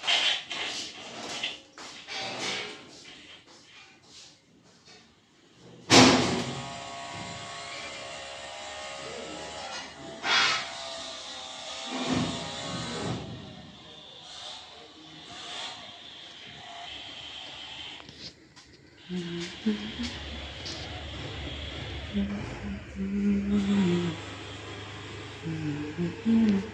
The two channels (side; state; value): both; identical; correlation 1.00